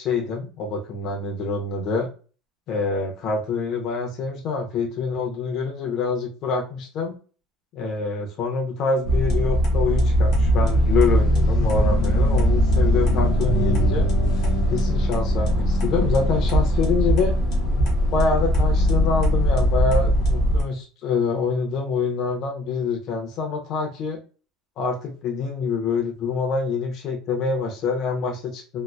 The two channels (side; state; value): both; normal; correlation 0.61